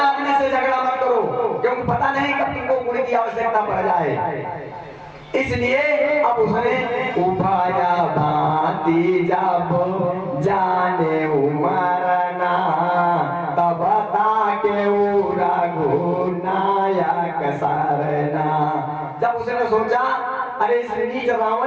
से झगड़ा मत करो, क्योंकि पता नहीं कब तुमको गुण की आवश्यकता पड़ जाए। इसलिए अब उसने उभाया भांति जब जाने उमरना, तब ताके रघुनायक सरना। जब उसने सोचा अरे इस नीच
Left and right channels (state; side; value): identical; both; correlation 1.00